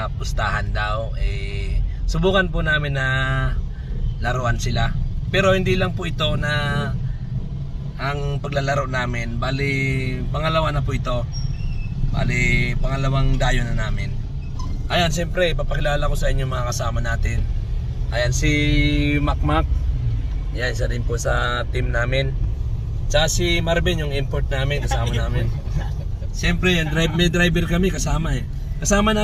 pustahan daw. Subukan po namin na laruan sila. Pero hindi lang po ito na ang paglalaro namin, bali pangalawa na po ito. Bali pangalawang dayo na namin. Ayan, siyempre papakilala ko sa inyo mga kasama natin. Ayan si Macmac. Yan, isa rin po sa team namin. Tsaka si Marvin, yung import namin, kasama namin. Siyempre yan, may driver kami kasama Kasama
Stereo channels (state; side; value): identical; both; correlation 1.00